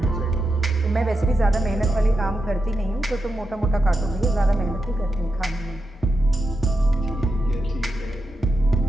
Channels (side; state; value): both; normal; correlation 0.87